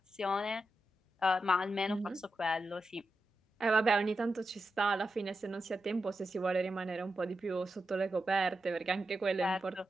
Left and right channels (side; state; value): both; normal; correlation 0.89